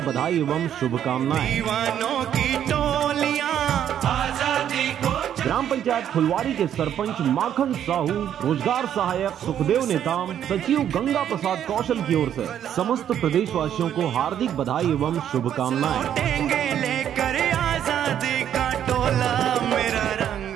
बधाई एवं शुभकामनाएं। ग्राम पंचायत फुलवारी के सरपंच माखन साहू, रोजगार सहायक सुखदेव नेताम, सचिव गंगा प्रसाद कौशल की ओर से समस्त प्रदेशवासियों को हार्दिक बधाई एवं शुभकामनाएं।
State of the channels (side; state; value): left; quieter; 9.9 dB